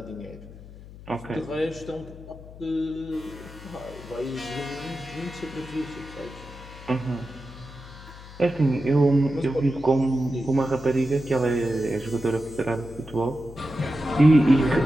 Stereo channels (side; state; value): left; noise; hum, 17 dB below the sound